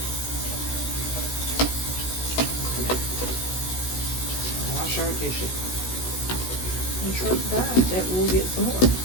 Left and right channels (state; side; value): late; right; 16 ms